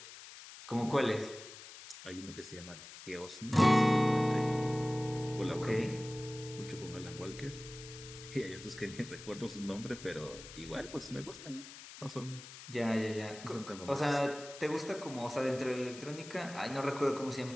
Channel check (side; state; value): left; noise; hiss, 14 dB below the sound